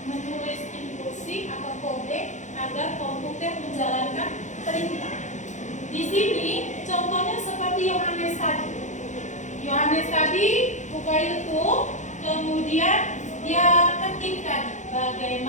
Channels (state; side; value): late; right; 0.35 ms